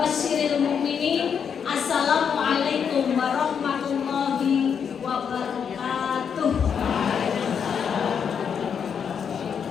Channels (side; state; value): right; quieter; 7.2 dB